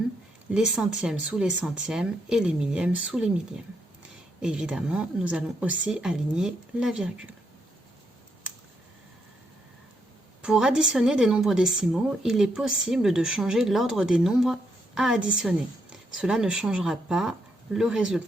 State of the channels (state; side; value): normal; both; correlation 0.78